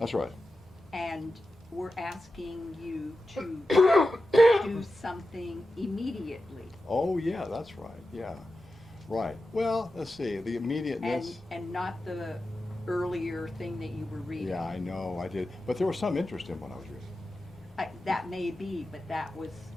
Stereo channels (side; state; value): both; normal; correlation 0.92